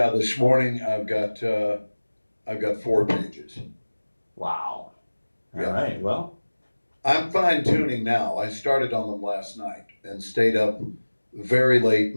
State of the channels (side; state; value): both; inverted; correlation -1.00